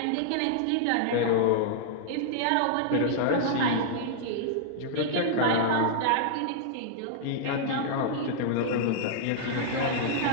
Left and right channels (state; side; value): different; both; correlation -0.01